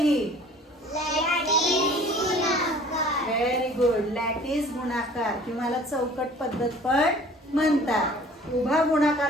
Very good. लॅटिस गुणाकार किंवा चौकट पद्धत पण म्हणतात. उभा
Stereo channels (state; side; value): normal; both; correlation 0.49